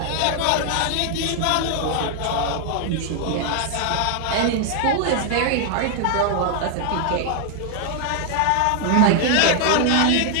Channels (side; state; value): both; different; correlation 0.00